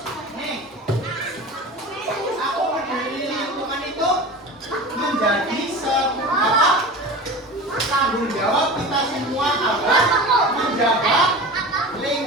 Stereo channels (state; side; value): normal; both; correlation 0.33